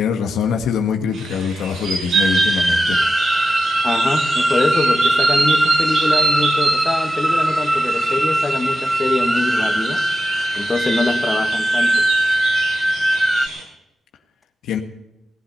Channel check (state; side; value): normal; both; correlation 0.90